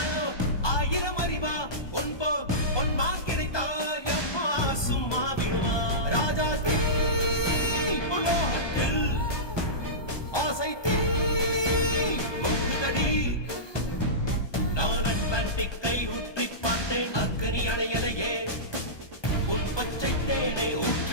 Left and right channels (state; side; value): late; right; 1.2 ms